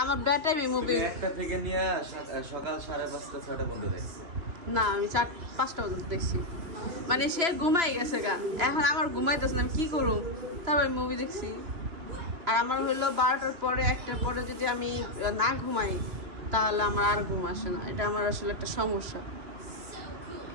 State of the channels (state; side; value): late; left; 3.0 ms